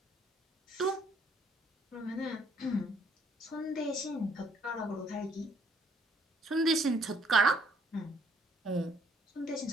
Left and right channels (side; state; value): both; normal; correlation 0.65